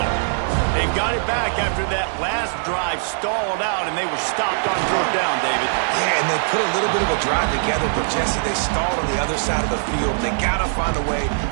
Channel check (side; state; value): left; silent; digital silence